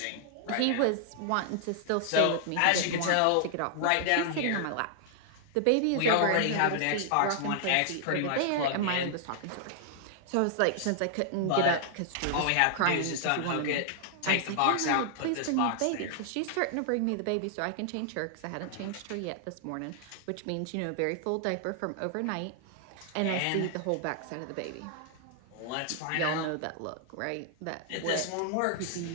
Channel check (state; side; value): different; both; correlation -0.01